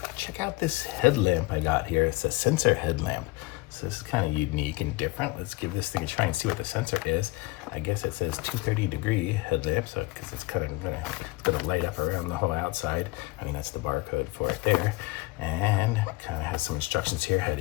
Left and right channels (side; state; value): right; quieter; 22.7 dB